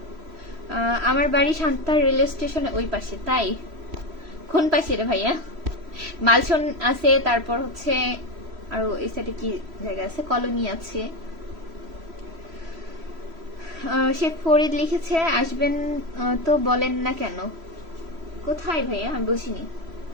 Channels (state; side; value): late; left; 3.1 ms